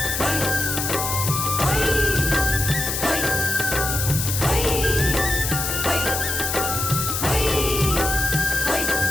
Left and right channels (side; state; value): left; noise; hiss, 2 dB below the sound